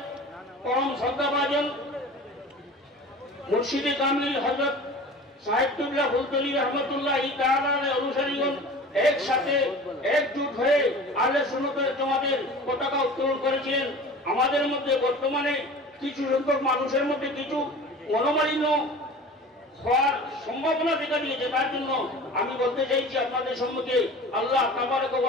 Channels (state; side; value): normal; both; correlation 0.39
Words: পরম শ্রদ্ধাভাজন মুর্শিদে কামিল হযরত সাহেবুল্লাহ ফুলতলি রহমতুল্লাহি তাআলা অনুসারীগণ একসাথে একজুট হয়ে আহলে সুন্নাতের জামাতের পতাকা উত্তোলন করেছিলেন। আমাদের মধ্যে বর্তমানে কিছু সংখ্যক মানুষের মধ্যে কিছু মনোমালিন্য হওয়ার সম্ভাবনা দেখা দিয়েছে, তার জন্য আমি বলতে চাইছি আপনাদের সম্মুখে আল্লাহ তাবারক